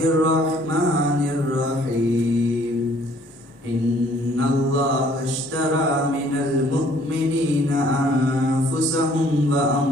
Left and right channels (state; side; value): normal; both; correlation 0.59